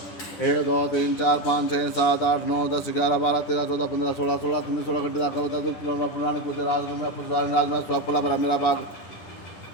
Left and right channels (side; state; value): right; late; 9.8 ms